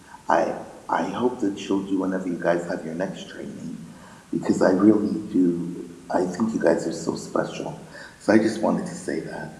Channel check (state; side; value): identical; both; correlation 1.00